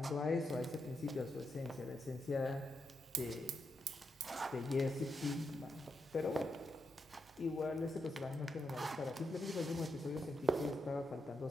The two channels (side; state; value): both; normal; correlation 0.84